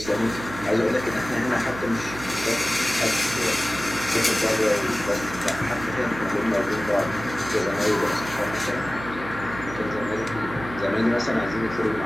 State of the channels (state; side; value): noise; right; hum, 12 dB below the sound